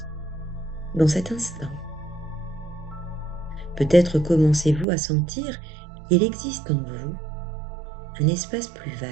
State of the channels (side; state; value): left; drops out; at 4.9 s